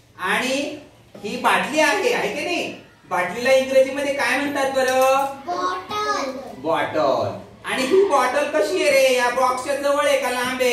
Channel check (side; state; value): both; identical; correlation 1.00